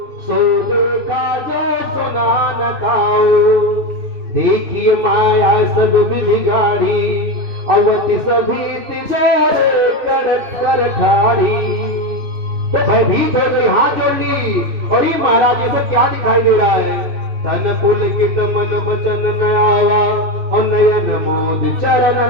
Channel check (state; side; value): late; left; 3.1 ms